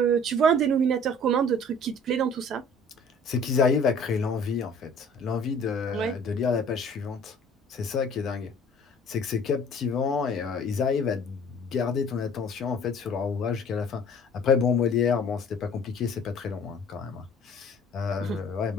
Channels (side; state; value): both; normal; correlation 0.50